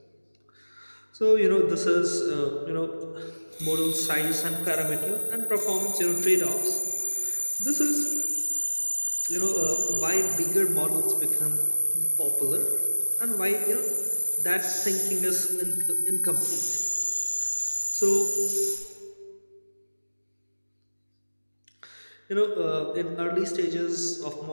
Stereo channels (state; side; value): inverted; both; correlation -1.00